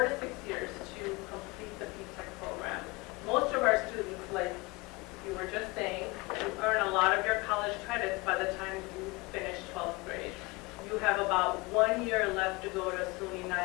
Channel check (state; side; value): quieter; right; 24.6 dB